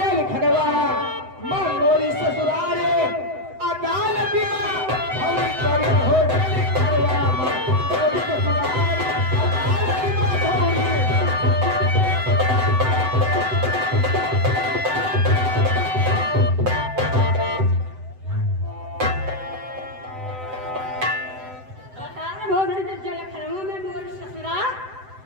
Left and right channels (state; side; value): late; left; 7.8 ms